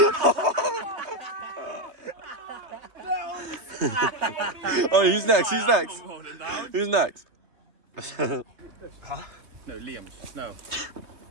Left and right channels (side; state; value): left; late; 3.2 ms